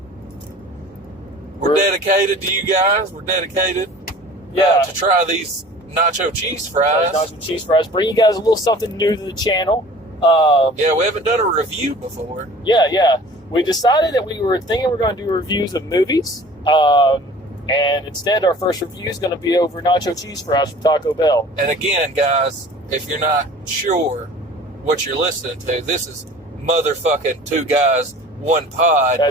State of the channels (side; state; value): both; normal; correlation 0.45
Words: we're dedicated to you guys. We're dedicated to try these nacho cheese fries. Nacho cheese fries. Bring you guys a little something new to the channel. We haven't done a review before. Yeah. We decided that we were thinking we're going to do reviews of movies. And instead, our first review is going to be over nacho cheese fries from Taco Bell. And again, guys, if you're not sure what you're listening to, this is motherfucking Two Guys, One Pod.